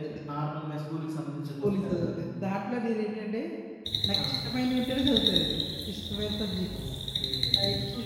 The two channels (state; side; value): identical; both; correlation 1.00